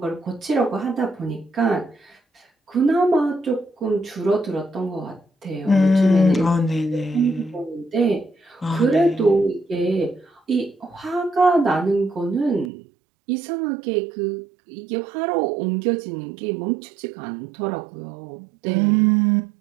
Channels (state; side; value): drops out; left; at 12.7 s